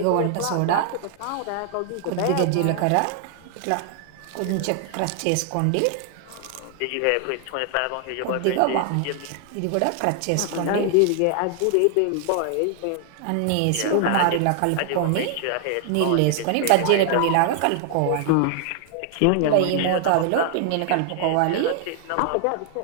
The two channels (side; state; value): both; different; correlation 0.00